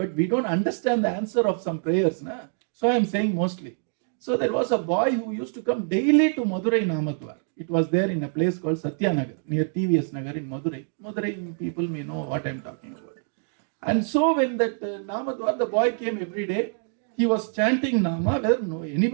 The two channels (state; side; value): silent; left; 59 dB below the other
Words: we don't understand the answer of some prayers. So I am saying mostly. So there was a boy who used to come daily to Madurai Namadwaar. It was there in a place called Satyanagar, near TVS Nagar in Madurai. Madurai people may know what I am talking about. And so when that Namadwaar, the boy came every day, he was chanting Nama, whether